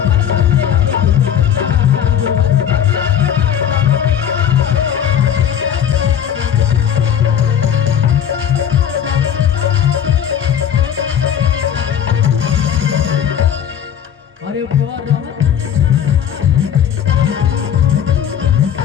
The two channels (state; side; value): quieter; right; 9.2 dB